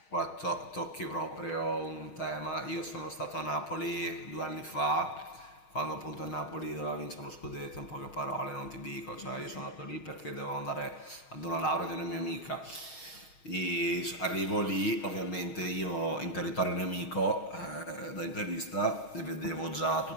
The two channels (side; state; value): right; late; 6.4 ms